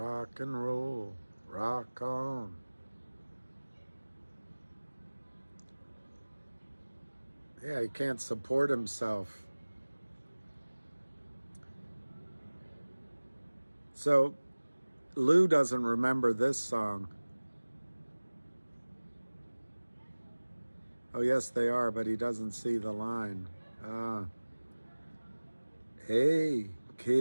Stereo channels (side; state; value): both; inverted; correlation -1.00